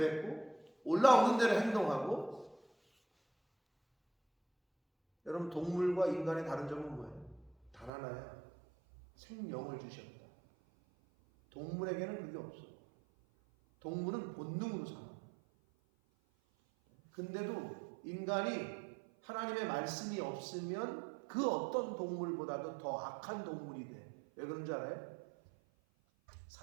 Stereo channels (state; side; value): drops out; left; at 7.9 s